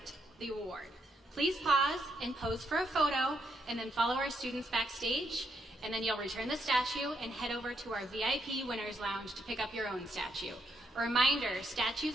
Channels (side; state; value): both; normal; correlation 0.77